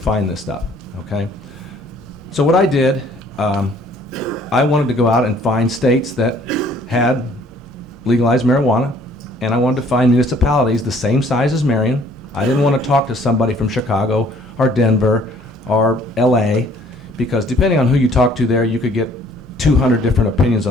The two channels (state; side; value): normal; both; correlation 0.59